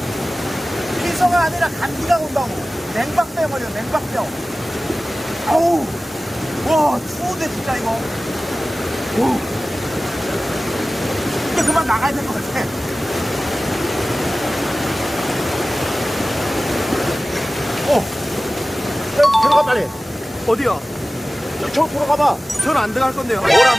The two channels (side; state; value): both; normal; correlation 0.97